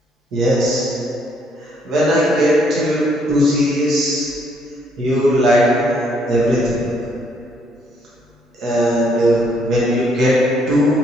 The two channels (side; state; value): both; normal; correlation 0.69